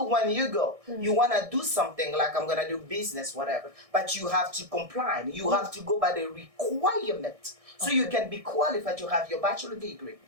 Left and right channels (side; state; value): left; late; 1.6 ms